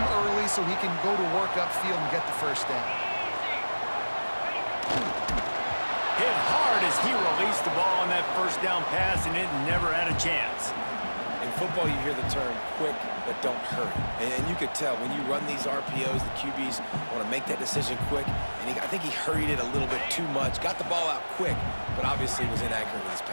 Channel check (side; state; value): both; inverted; correlation -1.00